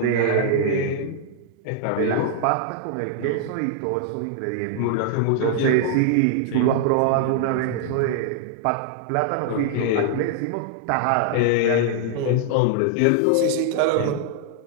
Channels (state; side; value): different; both; correlation -0.01